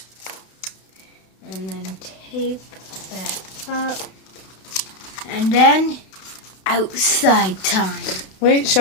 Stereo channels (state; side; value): late; right; 32 ms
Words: And then tape that up. And then outside time. Wait,